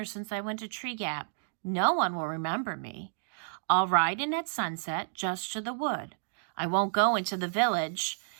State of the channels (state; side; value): silent; left; digital silence